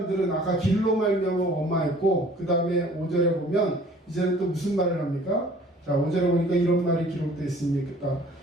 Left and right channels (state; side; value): normal; both; correlation 0.52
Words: 아까 길로 말미암아 원망했고, 그 다음에 5절에 보면 이제는 또 무슨 말을 합니까? 자, 5절에 보니까 이런 말이 기록되어 있습니다.